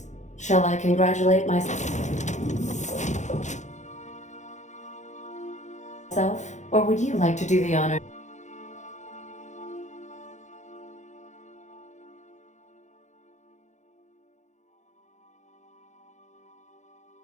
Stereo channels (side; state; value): right; late; 0.34 ms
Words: Shall I congratulate myself? myself, or would you like to do the honor?